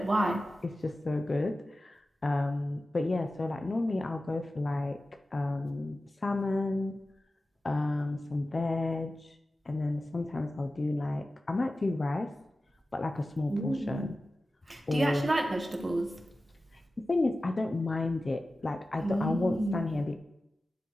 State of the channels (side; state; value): both; normal; correlation 0.94